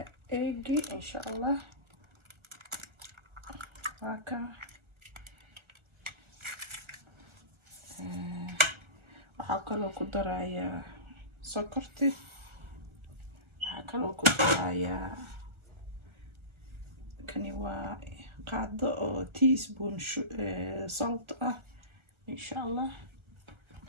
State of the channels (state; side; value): late; left; 1.3 ms